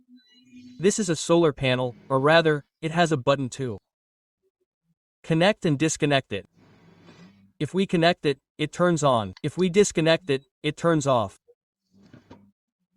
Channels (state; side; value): identical; both; correlation 1.00